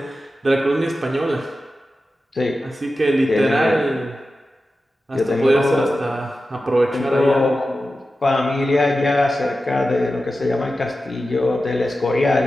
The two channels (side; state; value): both; normal; correlation 0.93